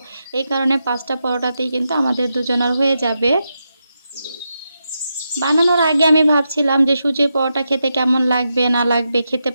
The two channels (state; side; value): inverted; both; correlation -0.86